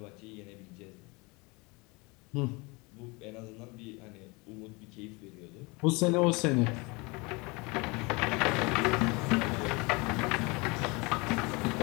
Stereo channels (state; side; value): quieter; right; 26.9 dB